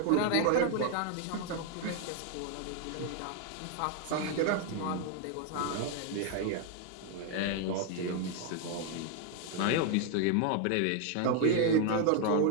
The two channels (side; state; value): both; different; correlation 0.01